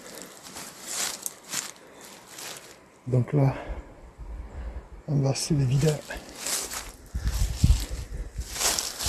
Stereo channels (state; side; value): identical; both; correlation 1.00